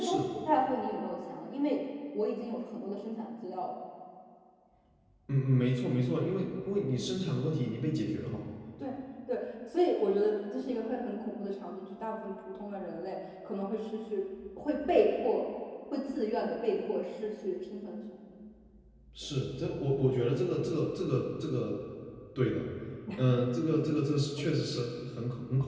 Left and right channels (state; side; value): identical; both; correlation 1.00